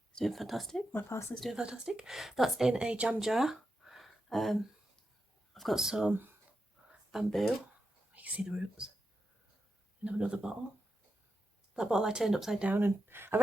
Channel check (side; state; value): both; normal; correlation 0.87